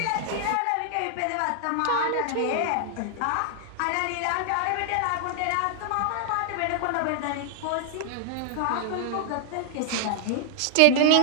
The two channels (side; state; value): both; different; correlation 0.00